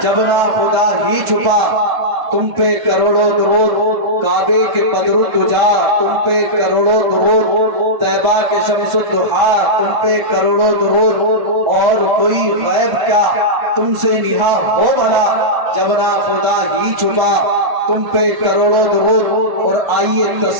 جب نہ خدا ہی چھپا تم پہ کروڑوں درود، کعبے کے بدر الدجا تم پہ کروڑوں درود، طیبہ کے شمس الضحیٰ تم پہ کروڑوں درود، اور کوئی غیب کیا تم سے نہاں ہو بھلا، جب نہ خدا ہی چھپا تم پہ کروڑوں درود۔ اور آئیے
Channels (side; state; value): left; late; 1.5 ms